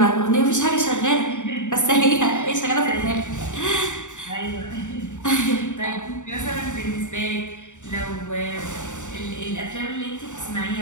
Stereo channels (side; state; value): right; late; 0.85 ms